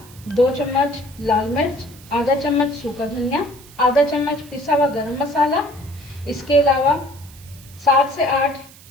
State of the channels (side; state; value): right; noise; hiss, 22 dB below the sound